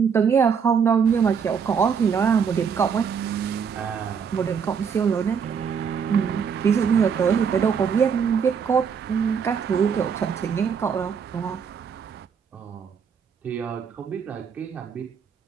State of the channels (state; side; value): quieter; left; 6.8 dB